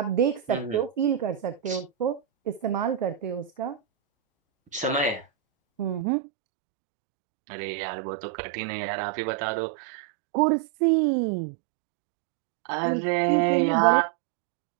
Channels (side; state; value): left; drops out; at 6.1 s